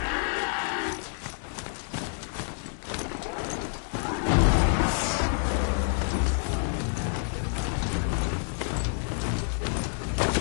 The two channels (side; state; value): right; silent; 59 dB below the other